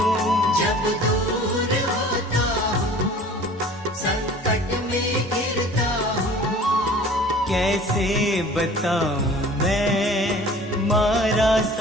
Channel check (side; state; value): both; normal; correlation 0.46